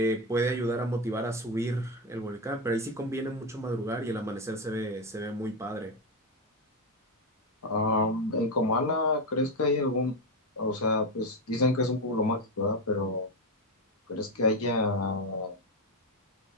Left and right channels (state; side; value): normal; both; correlation 0.11